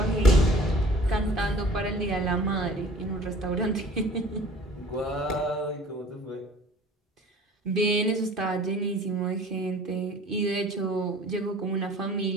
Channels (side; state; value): both; normal; correlation 0.48